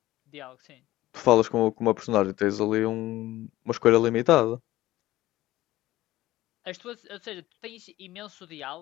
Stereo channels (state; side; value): quieter; right; 16.4 dB